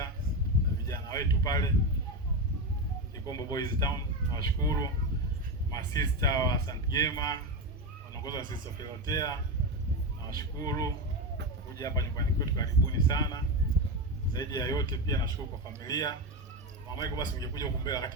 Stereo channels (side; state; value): both; normal; correlation 0.15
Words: na vijana wetu pale Kikombo Boys Town. Nashukuru masista wa St. Gema wanaongozwa na Sister Filotea. Nashukuru kuja hapa nyumbani kwetu, karibuni sana. Zaidi ya yote pia nashukuru kwa familia. Mama Michael, basi ungekuja huko mbele